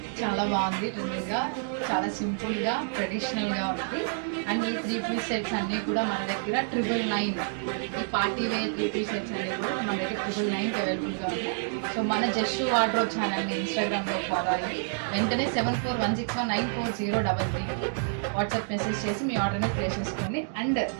చాలా బాగుంది. Trending గా, చాలా సింపుల్ గా, ట్రెడిషనల్ గా ఉంది. అండ్ ఈ 3-piece సెట్స్ అన్ని కూడా మన దగ్గర 999. ఈ పార్టీ వేర్ 3-piece సెట్స్ అనేవి కూడా మన దగ్గర 999 అవైలబుల్ గా ఉన్నాయి. సో మన జస్ట్ వార్డ్రోబ్ ఛానల్ ని ఇన్స్టాగ్రామ్ లో ఫాలో అయ్యి వెంటనే 7416194033కి వాట్సాప్ మెసేజ్ చేసి మీ ఆర్డర్ ని ప్లేస్ చేసుకోండి. అండ్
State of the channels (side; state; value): left; silent; digital silence